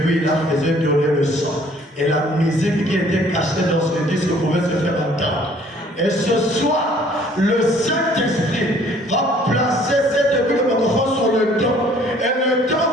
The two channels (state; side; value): normal; both; correlation 0.57